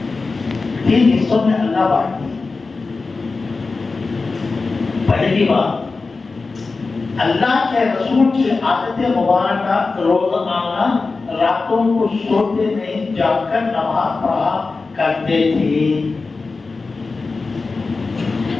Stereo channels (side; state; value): right; quieter; 4.0 dB